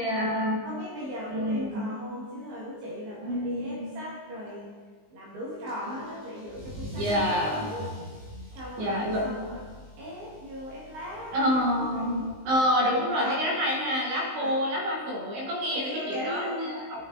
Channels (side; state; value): left; late; 19 ms